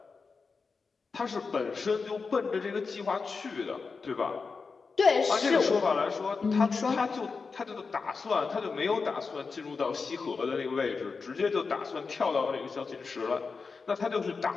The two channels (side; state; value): right; quieter; 4.7 dB